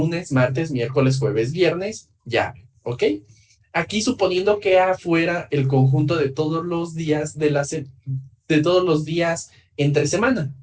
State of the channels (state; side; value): identical; both; correlation 1.00